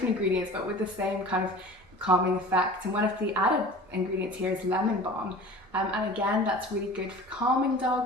ingredients but with the same kind of calming effect, and one of the added ingredients here is lemon balm, and again that's really good for calming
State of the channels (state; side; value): normal; both; correlation 0.41